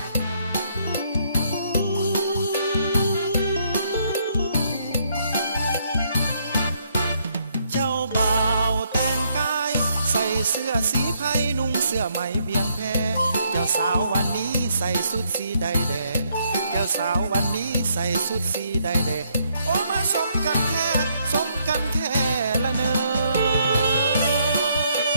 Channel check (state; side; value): inverted; both; correlation -0.72